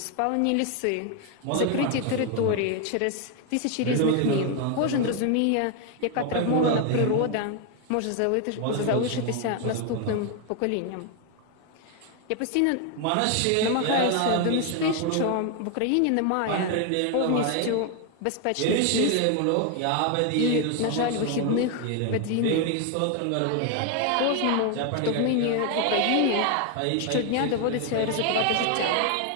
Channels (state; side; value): different; both; correlation 0.01